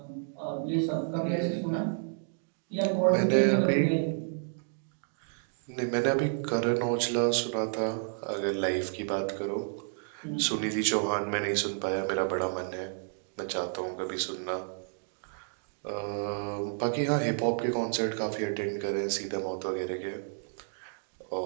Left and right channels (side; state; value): left; silent; digital silence